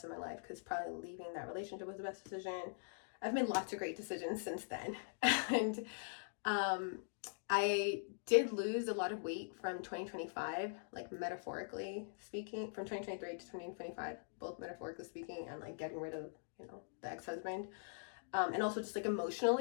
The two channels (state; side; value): silent; right; digital silence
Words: of my life, because probably leaving that relationship was the best decision. I've made lots of great decisions since then. And I did lose a lot of weight from 2025, like metaphorically speaking, from 2023 to 2025, both metaphorically speaking and like getting rid of, you know, the ex-husband. And also just like